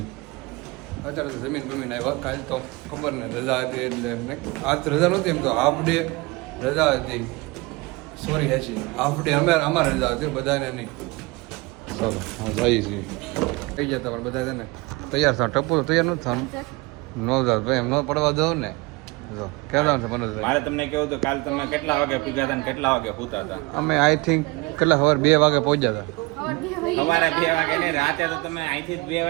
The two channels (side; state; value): left; quieter; 24.1 dB